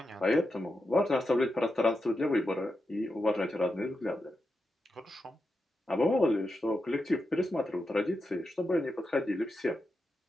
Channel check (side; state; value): both; normal; correlation 0.88